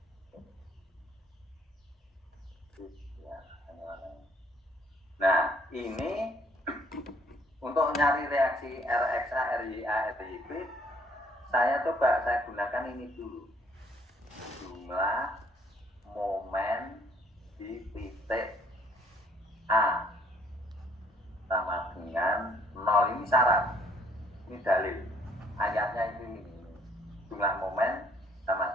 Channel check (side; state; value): both; normal; correlation 0.63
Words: Nah, ini untuk nyari reaksi RXA, RYA, RYB, saya gunakan ini dulu. Jumlah momen di titik A sama dengan 0. Ini syarat, ini dalil. Ayatnya ini jumlah momen